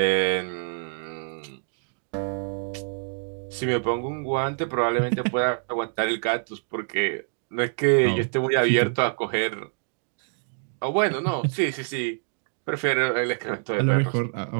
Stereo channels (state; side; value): silent; left; digital silence